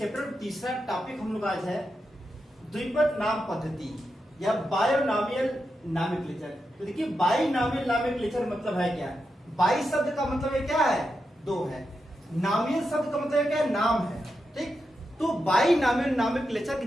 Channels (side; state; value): both; normal; correlation 0.87